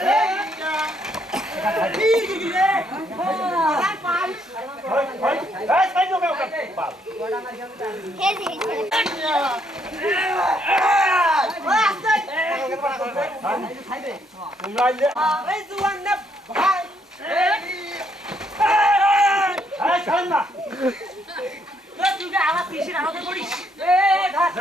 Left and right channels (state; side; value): normal; both; correlation 0.72